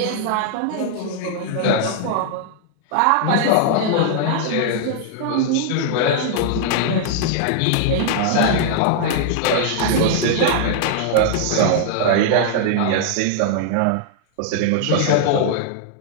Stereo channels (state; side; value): different; both; correlation -0.01